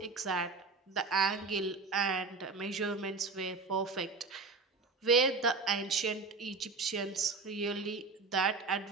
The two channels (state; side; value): quieter; left; 4.1 dB